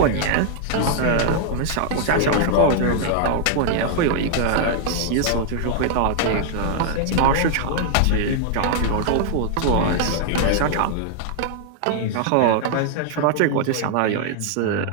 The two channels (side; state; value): both; different; correlation 0.00